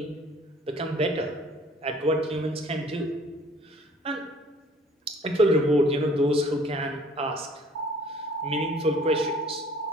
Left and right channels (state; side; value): normal; both; correlation 0.54